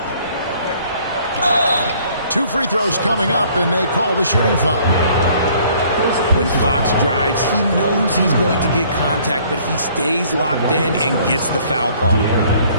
2 free throws coming up, and they call the shooting foul. When Fox drives, he knows he's going to get contact, but he stays locked in and gets the foul call.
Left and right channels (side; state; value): both; inverted; correlation -0.58